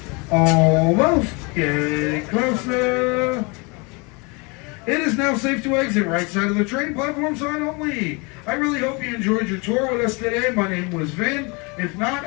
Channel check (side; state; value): right; quieter; 29.5 dB